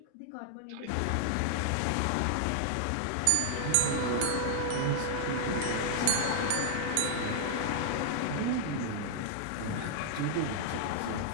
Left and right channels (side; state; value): both; different; correlation 0.00